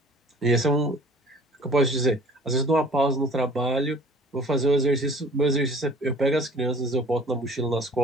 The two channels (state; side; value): normal; both; correlation 0.49